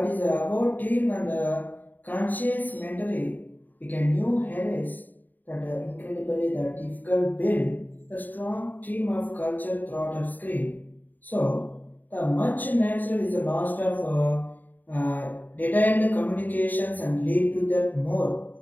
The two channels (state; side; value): late; right; 0.087 ms